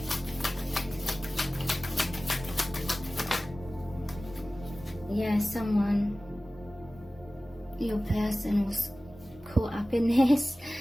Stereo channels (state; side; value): normal; both; correlation 0.97